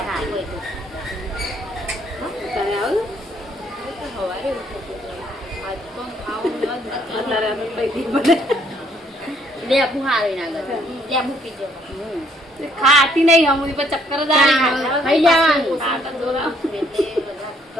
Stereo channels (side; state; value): both; normal; correlation 0.66